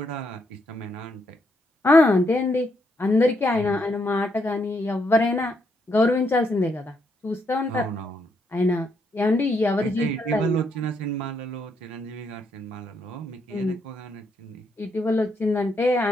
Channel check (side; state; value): both; normal; correlation 0.76